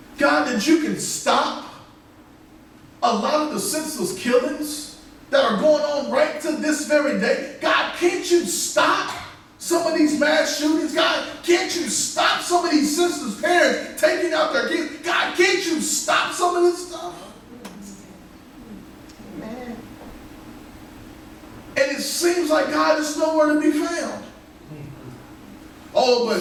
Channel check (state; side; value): identical; both; correlation 1.00